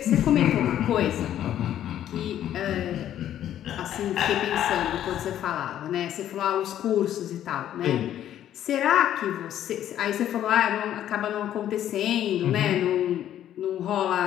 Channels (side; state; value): right; quieter; 11.3 dB